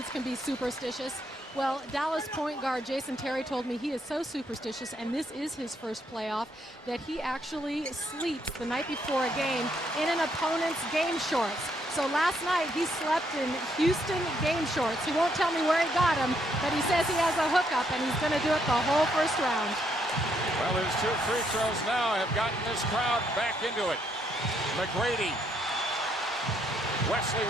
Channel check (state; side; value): normal; both; correlation 0.73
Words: can be superstitious. Well, Dallas point guard Jason Terry told me he is so superstitious, and this is his first playoff, that he actually sleeps the night before a game in an opponent's game shorts. So last night he slept in Houston game shorts. He won't tell me where he got them, but he says he has a hookup and he's going to do it the whole first round. Well, his 2 free throws now have gotten this crowd back into it. McGrady. Wesley